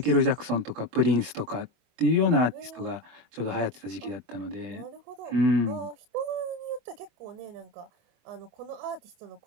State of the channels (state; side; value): late; left; 24 ms